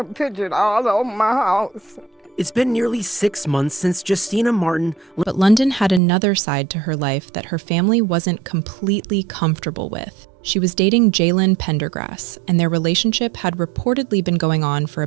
pictured all over my house. It's been nearly 6 months since Justina Martin. But London had another side to her life that her family wasn't completely comfortable with. She was dating Jaylen Pendergrass, and their relationship had reportedly been going on for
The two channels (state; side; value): drops out; left; at 6.0 s